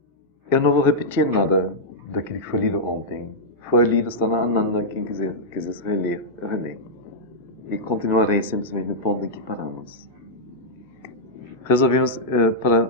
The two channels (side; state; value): both; normal; correlation -0.08